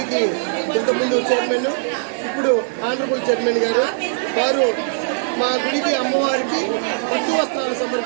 ఇంతకుముందు చైర్మన్, ఇప్పుడు ఆనరబుల్ చైర్మన్ గారు వారు మా గుడికి అమ్మవారికి పట్టు వస్త్రాలు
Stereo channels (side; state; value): left; silent; digital silence